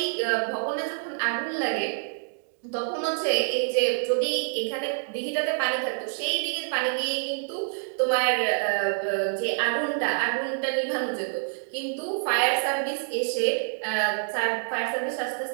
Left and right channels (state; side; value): silent; left; digital silence